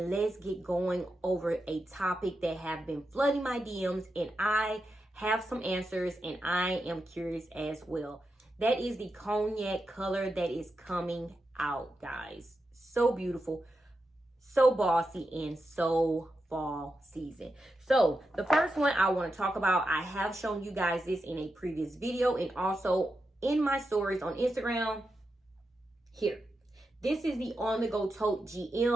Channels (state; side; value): normal; both; correlation 0.88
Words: let's get going over a topic that have been flooding my DMs, and I have some answers and I am curious as well. That is the cognac color that is coming out, guys. So beautiful, so bossy, and so fall season. So the first one I want to talk about, I have shown you guys this in a previous video and also in my stories on Instagram. Here, this is the On The Go Tote